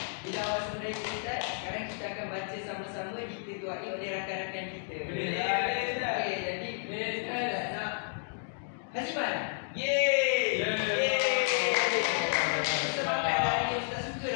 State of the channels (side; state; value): right; silent; digital silence